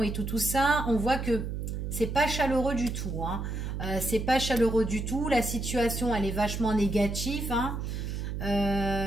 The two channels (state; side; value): noise; right; hum, 4 dB below the sound